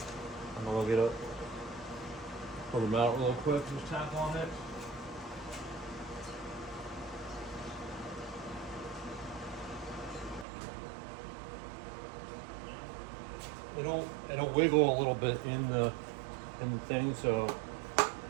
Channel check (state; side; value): drops out; left; at 10.5 s